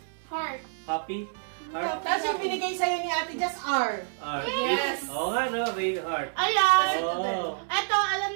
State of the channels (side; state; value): left; silent; 59 dB below the other